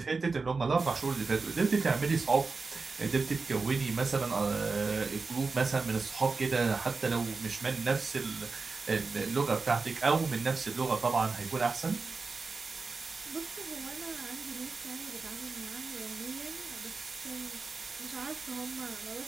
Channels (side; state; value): left; quieter; 4.3 dB